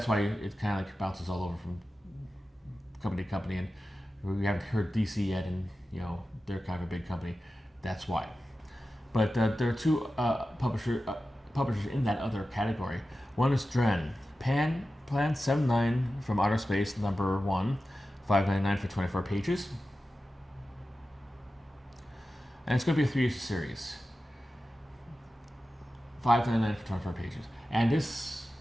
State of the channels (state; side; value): normal; both; correlation 0.94